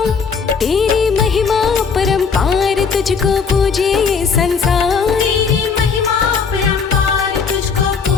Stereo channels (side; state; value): right; quieter; 5.7 dB